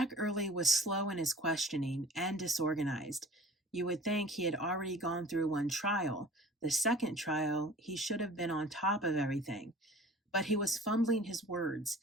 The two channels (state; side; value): normal; both; correlation 0.45